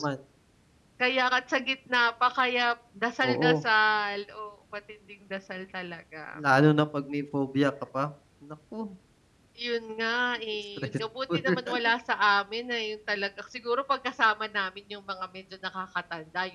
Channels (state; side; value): identical; both; correlation 1.00